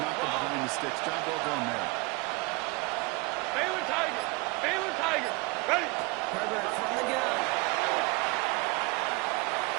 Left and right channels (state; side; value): quieter; left; 25.5 dB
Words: them behind the sticks. Job well done there. Baylor Tiger. Baylor Tiger. Ready. Herbert from the gun.